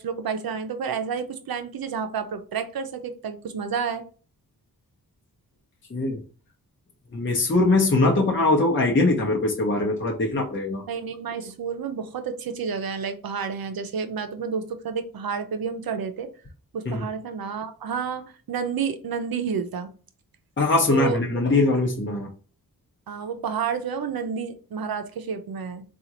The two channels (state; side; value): normal; both; correlation 0.24